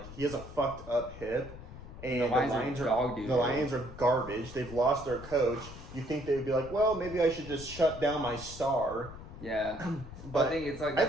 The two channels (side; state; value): left; noise; rumble, 14 dB below the sound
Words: he has a fucked up hip, and The Lions are dog doo. The Lions are garbage. They've lost their coach. You think they would be like, well, maybe I should just shut down my star. Yeah, But I think it's like I